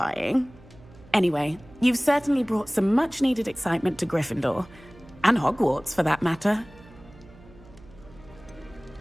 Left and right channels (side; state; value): right; noise; hum, 23 dB below the sound